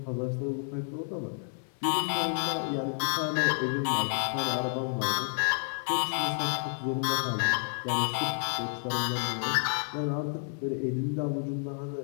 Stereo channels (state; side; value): silent; right; 58 dB below the other